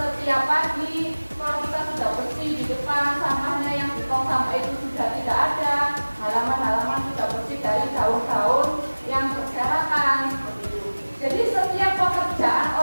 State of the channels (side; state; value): both; inverted; correlation -1.00